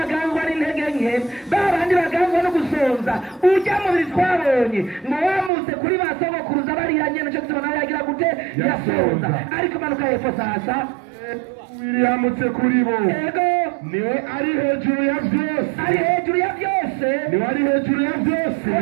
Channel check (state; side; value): drops out; left; at 5.5 s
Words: n'intege nke babandi baganzwa no gusonza ujya mubiri twabonye ngo wamutse kuri basogokuruza bariyanye n'icyo gituma nawe yagira gute yasonza ariko manuka hepfo sasa yamutse kuri bo niwe ari hejuru ya byose niwe ari hejuru ya byose